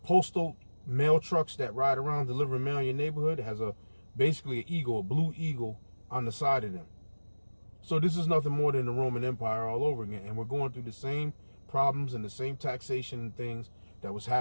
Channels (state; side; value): inverted; both; correlation -1.00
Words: mail trucks that ride around delivering mail in your neighborhood has basically an eagle, a blue eagle on the side of them. So this is nothing more than the Roman Empire all over again. And we're going through the same problems and the same taxation and things that was